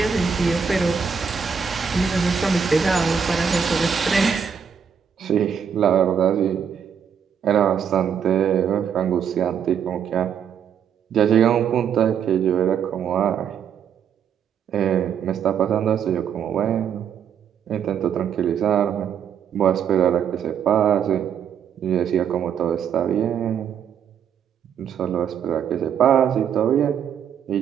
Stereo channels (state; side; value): quieter; left; 7.6 dB